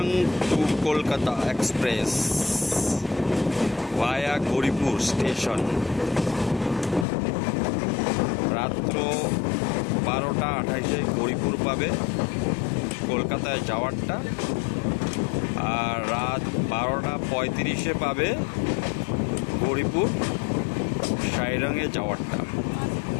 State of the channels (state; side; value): drops out; right; at 7.1 s